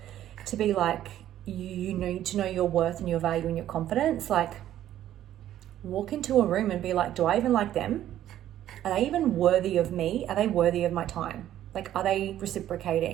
to be like, you need to know your worth and your value and your confidence. Like, walk into a room and be like, do I even like them? Are they even worthy of me? Are they worthy of my time? Like, are they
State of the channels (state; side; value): quieter; left; 12.2 dB